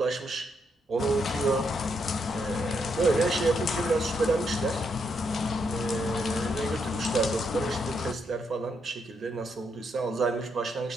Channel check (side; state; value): both; normal; correlation 0.78